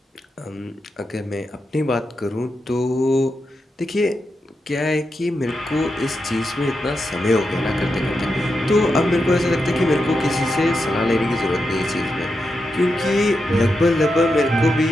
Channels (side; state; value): both; normal; correlation 0.87